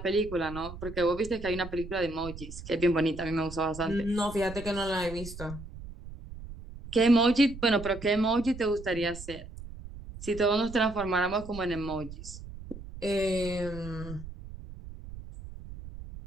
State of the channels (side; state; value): right; noise; rumble, 13 dB below the sound